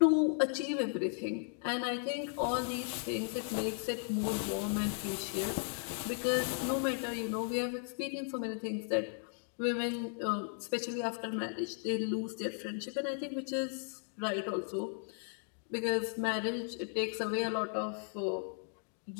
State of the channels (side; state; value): right; silent; 54 dB below the other